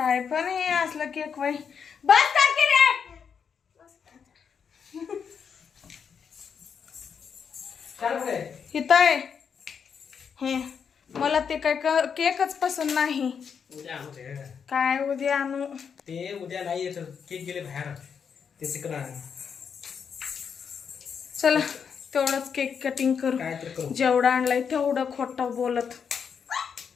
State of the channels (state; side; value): quieter; right; 6.8 dB